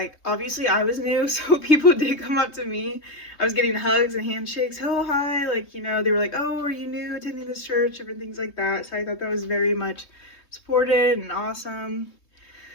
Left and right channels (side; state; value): right; late; 3.2 ms